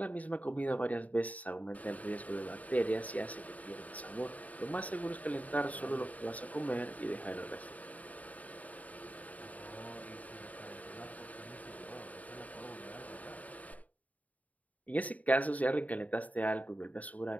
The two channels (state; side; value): late; right; 0.072 ms